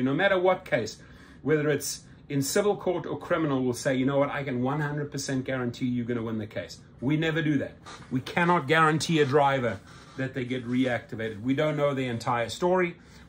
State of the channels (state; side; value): identical; both; correlation 1.00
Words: no matter what case, whether it's in civil court or criminal, will say, you know what, I can 100% guarantee you're going to win the case. We never do that. We cannot guarantee a driver that they get reactivated. We don't know the entire story.